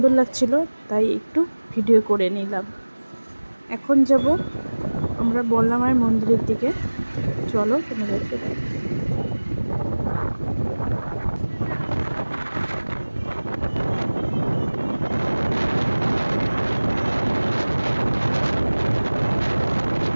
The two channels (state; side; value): inverted; both; correlation -1.00